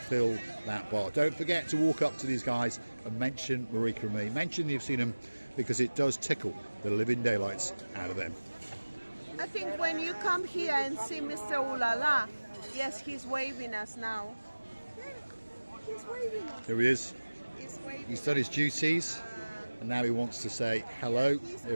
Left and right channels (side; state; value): both; inverted; correlation -1.00